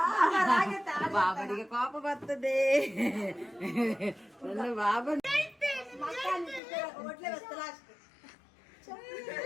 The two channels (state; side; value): drops out; right; at 6.6 s